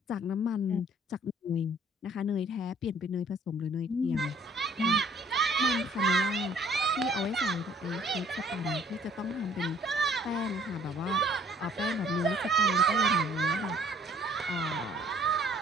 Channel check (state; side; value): normal; both; correlation 0.58